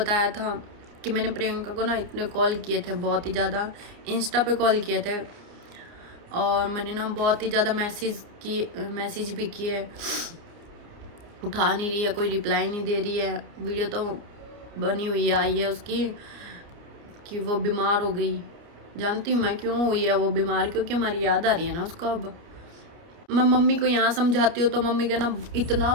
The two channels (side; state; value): left; late; 29 ms